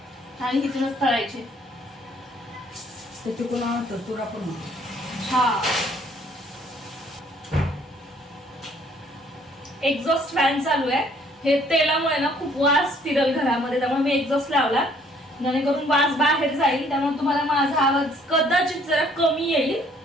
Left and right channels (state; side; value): normal; both; correlation 0.61